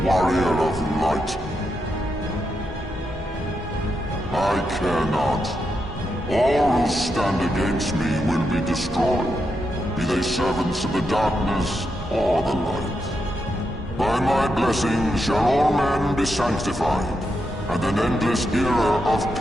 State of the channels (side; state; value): both; normal; correlation 0.84